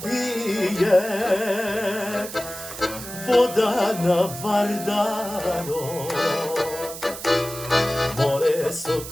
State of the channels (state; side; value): noise; right; hiss, 11 dB below the sound